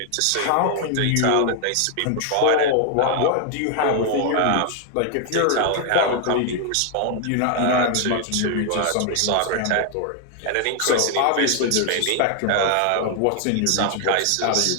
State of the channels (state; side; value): different; both; correlation 0.00